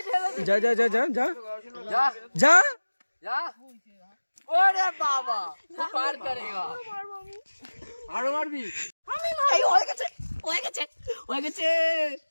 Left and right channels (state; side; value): inverted; both; correlation -1.00